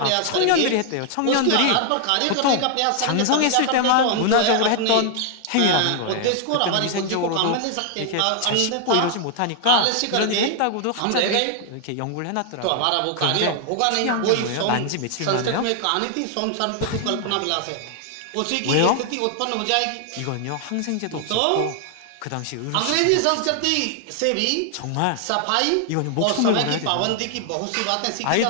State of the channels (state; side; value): different; both; correlation 0.00